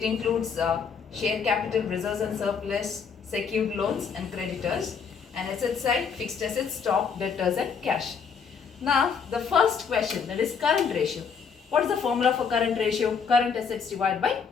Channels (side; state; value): right; quieter; 6.2 dB